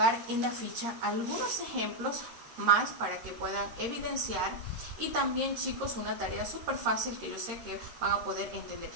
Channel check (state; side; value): late; left; 13 ms